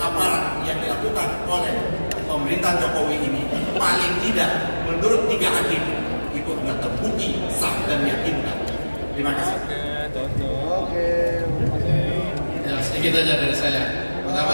yang dilakukan oleh pemerintah Jokowi ini paling tidak menurut 3 hakim itu sudah terbukti sah dan meyakinkan. Terima kasih. Oke. Ya, sedikit aja dari saya.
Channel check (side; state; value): both; inverted; correlation -1.00